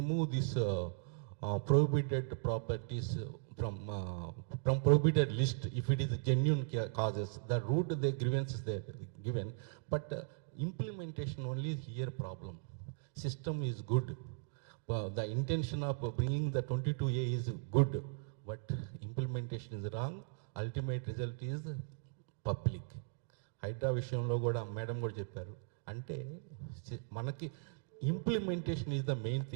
this prohibited properties from prohibited list if it is genuine causes. The root the grievances they given, but implementation only is here problem. System is good, the intention of bringing the 22A is good, but implementation is wrong. Ultimate result is public. HYDRAA విషయంలో కూడా madam కూడా చెప్పారు. అంటే మనకి implementation is the main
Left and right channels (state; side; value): silent; left; digital silence